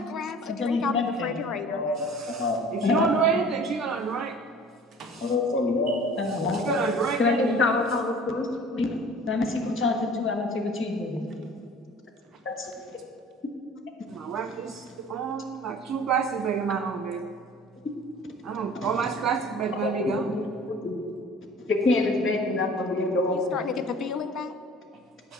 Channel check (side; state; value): both; normal; correlation 0.46